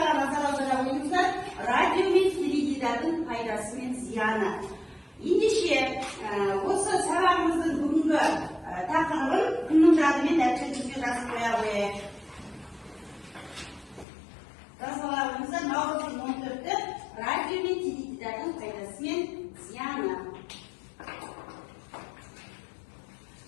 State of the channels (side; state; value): right; drops out; at 14.1 s